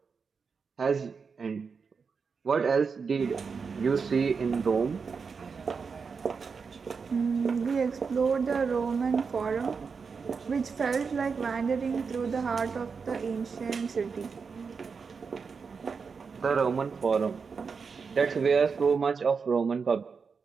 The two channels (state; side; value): quieter; left; 5.4 dB